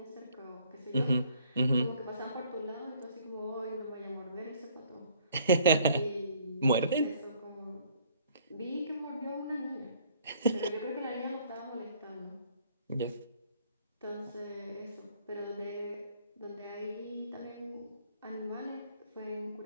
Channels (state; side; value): inverted; both; correlation -0.60